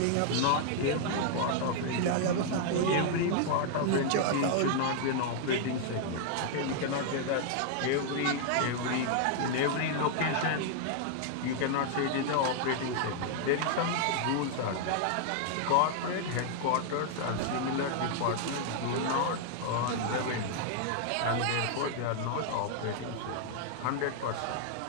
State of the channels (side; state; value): both; different; correlation 0.00